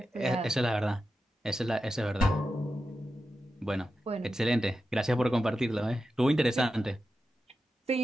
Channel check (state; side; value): normal; both; correlation 0.90